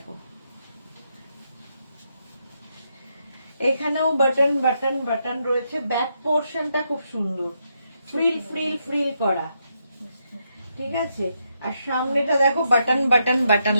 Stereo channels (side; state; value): both; inverted; correlation -0.80